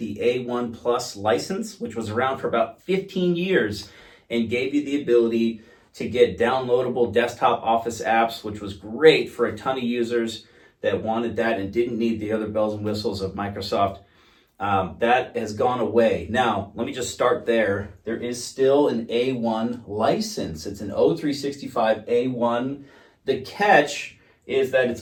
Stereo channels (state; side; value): identical; both; correlation 1.00